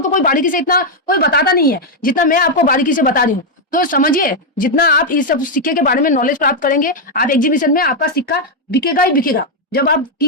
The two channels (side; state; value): both; normal; correlation 0.01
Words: तो कोई बारीकी से इतना कोई बताता नहीं है जितना मैं आपको बारीकी से बता रही हूँ। तो समझिए, जितना आप इस सब सिक्के के बारे में नॉलेज प्राप्त करेंगे, आप एग्जीबिशन में आपका सिक्का बिकेगा ही बिकेगा। जब आप